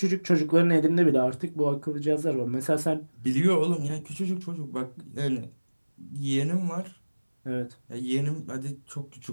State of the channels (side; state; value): both; inverted; correlation -1.00